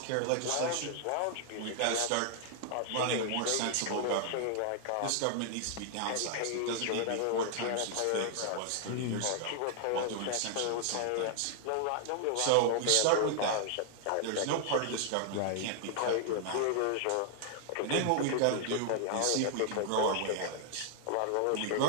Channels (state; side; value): different; both; correlation -0.01